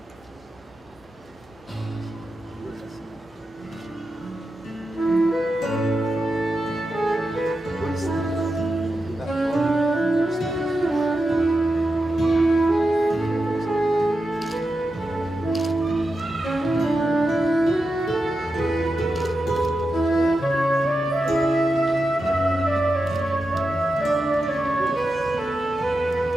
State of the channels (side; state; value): both; normal; correlation 0.89